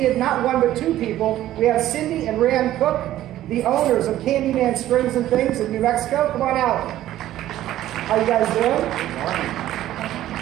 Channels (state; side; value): quieter; left; 13.6 dB